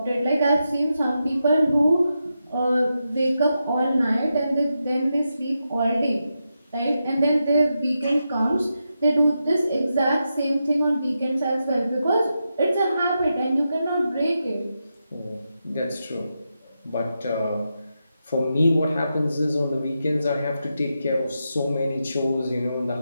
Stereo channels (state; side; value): inverted; both; correlation -0.87